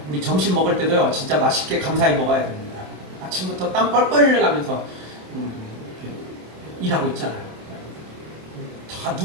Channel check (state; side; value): late; left; 27 ms